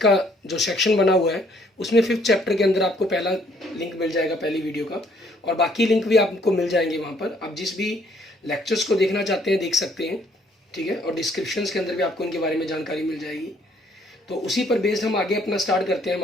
जो सेक्शन बना हुआ है उसमें 5th चैप्टर के अंदर आपको पहला लिंक मिल जाएगा, पहली वीडियो का, और बाकी लिंक भी आपको मिल जाएंगे वहाँ पर। आप जिस भी लेक्चर्स को देखना चाहते हैं देख सकते हैं, ठीक है, और डिस्क्रिप्शंस के अंदर भी आपको इनके बारे में जानकारी मिल जाएगी। तो उसी पर बेस्ड हम आगे अपना स्टार्ट करते हैं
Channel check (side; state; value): both; normal; correlation 0.64